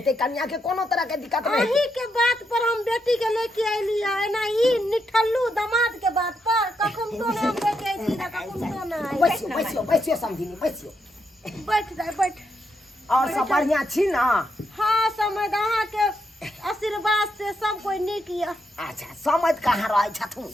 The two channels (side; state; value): both; normal; correlation 0.81